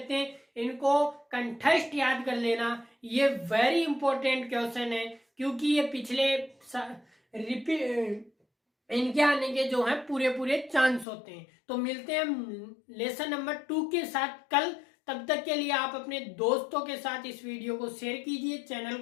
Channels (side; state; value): right; drops out; at 11.1 s